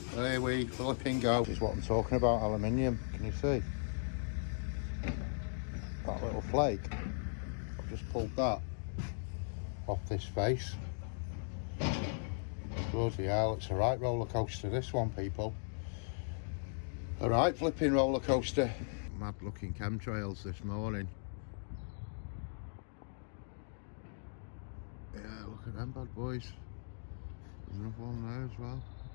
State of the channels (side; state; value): right; silent; digital silence